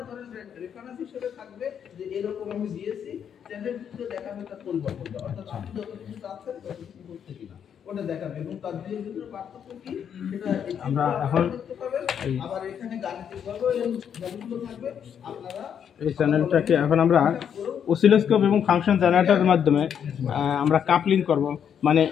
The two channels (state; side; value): quieter; right; 8.3 dB